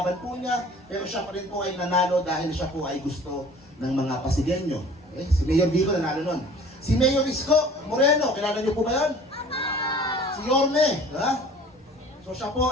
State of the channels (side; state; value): both; normal; correlation 0.47